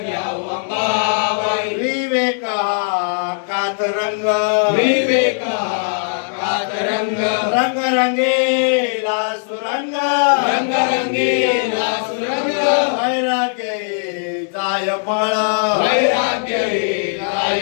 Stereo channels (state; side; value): silent; right; digital silence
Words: घ्यावा मामाई विवेक हा कातरंग विवेका कातरंग रंगरंगेला सुरंग रंगरंगीला सुरंग वैराग्य जाय फळ वैराग्य काय